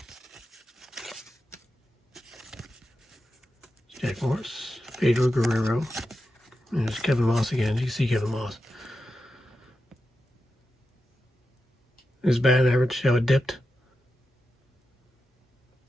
Jack Morris, Pedro Guerrero, and there's Kevin Moss again. You see Kevin Moss. His batting average, how it dipped.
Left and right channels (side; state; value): both; normal; correlation 0.89